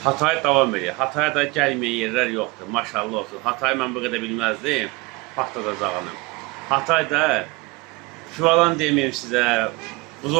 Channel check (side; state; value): left; quieter; 25.0 dB